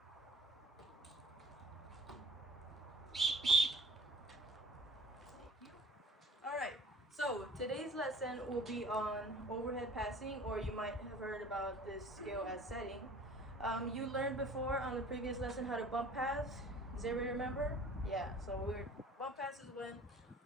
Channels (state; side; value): normal; both; correlation 0.49